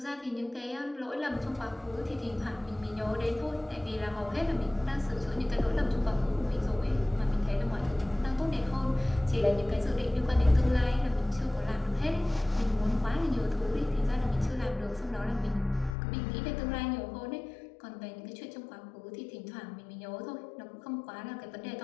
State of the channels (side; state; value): right; drops out; at 16.0 s